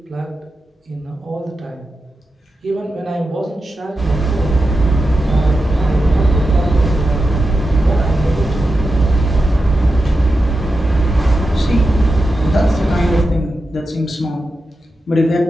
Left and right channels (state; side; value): normal; both; correlation 0.90